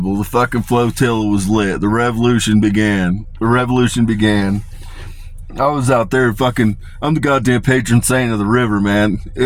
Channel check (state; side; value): identical; both; correlation 1.00